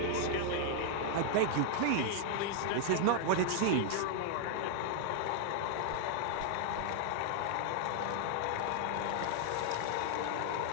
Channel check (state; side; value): different; both; correlation 0.00